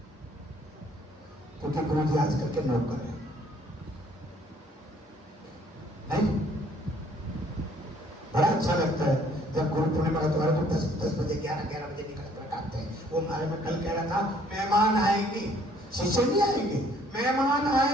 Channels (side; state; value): both; normal; correlation 0.61